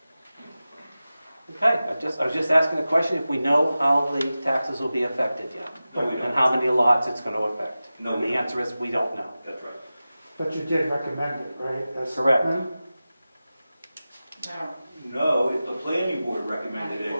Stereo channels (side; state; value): both; inverted; correlation -0.95